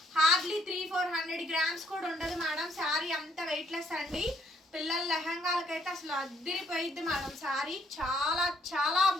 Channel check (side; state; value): both; normal; correlation 0.69